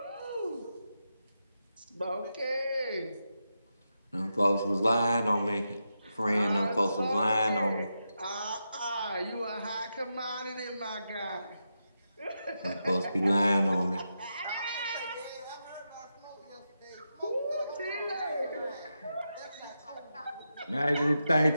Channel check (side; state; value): both; inverted; correlation -0.87